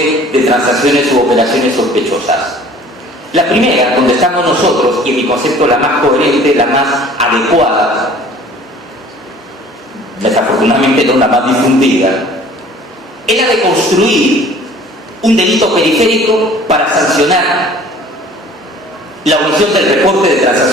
de transacciones u operaciones sospechosas. La primera, donde estamos nosotros, y en mi concepto la más coherente, la más adecuada, desafortunadamente no la más difundida, es la de construir un delito periférico para sancionar la omisión del reporte de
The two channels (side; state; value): both; normal; correlation 0.50